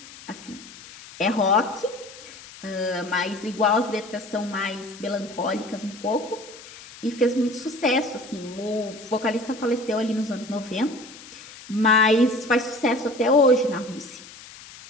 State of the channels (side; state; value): left; noise; hiss, 18 dB below the sound